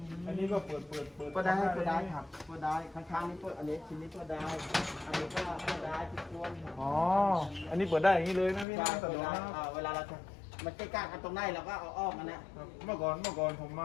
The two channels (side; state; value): right; drops out; at 8.7 s